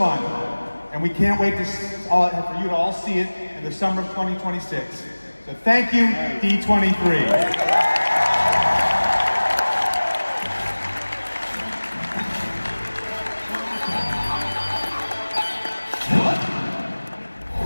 and we can't wait for you to all see it in the summer of 2026. So thank you, D23.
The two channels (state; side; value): inverted; both; correlation -1.00